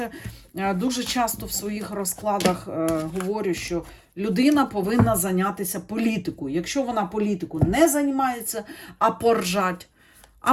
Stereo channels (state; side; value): identical; both; correlation 1.00